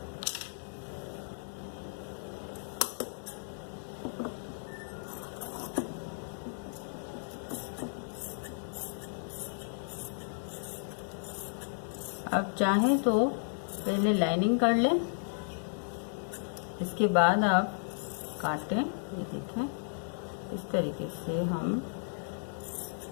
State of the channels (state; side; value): silent; right; digital silence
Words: अब चाहें तो पहले लाइनिंग कर लें, इसके बाद आप काटें। ये देखें, इस तरीके से हम